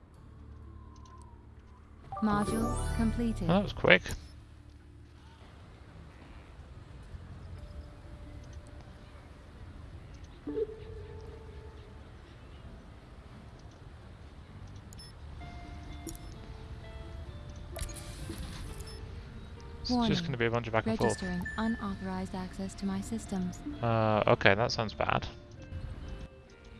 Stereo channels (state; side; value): identical; both; correlation 1.00